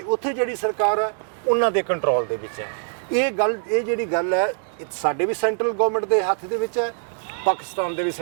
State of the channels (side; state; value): left; silent; digital silence